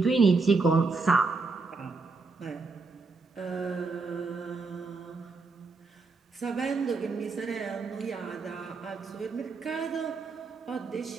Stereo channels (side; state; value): left; quieter; 4.1 dB